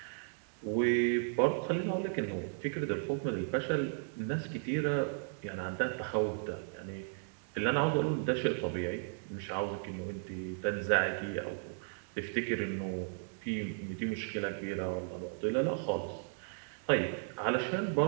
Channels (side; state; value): left; silent; digital silence